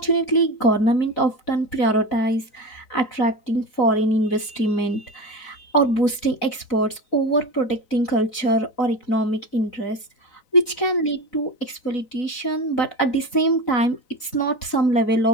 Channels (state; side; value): late; right; 4.0 ms